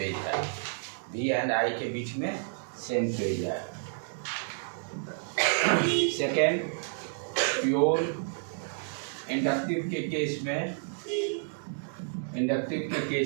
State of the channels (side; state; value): left; silent; digital silence